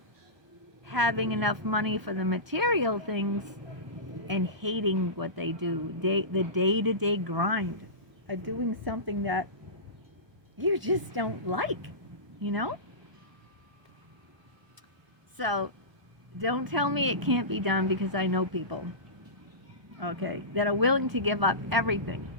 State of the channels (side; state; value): left; late; 1.2 ms